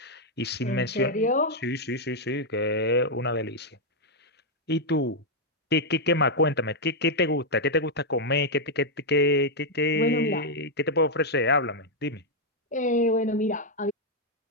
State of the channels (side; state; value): both; normal; correlation -0.02